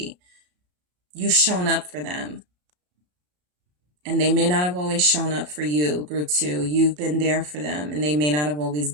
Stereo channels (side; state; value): left; late; 33 ms